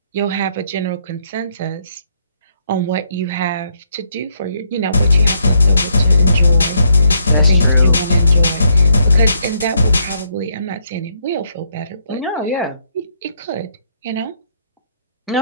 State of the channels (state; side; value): inverted; both; correlation -0.73